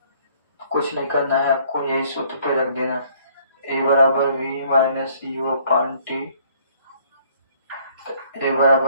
कुछ नहीं करना है आपको, यही सूत्र पे रख देना, a बराबर v minus u upon T. a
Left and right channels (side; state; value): both; inverted; correlation -0.61